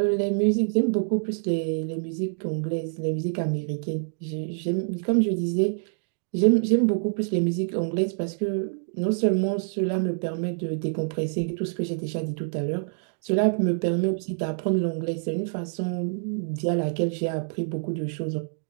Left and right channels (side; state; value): left; silent; digital silence